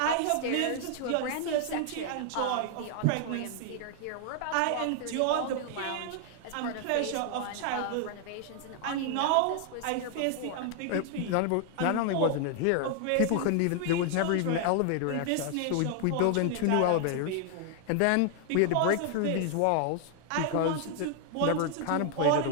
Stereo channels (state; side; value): different; both; correlation 0.00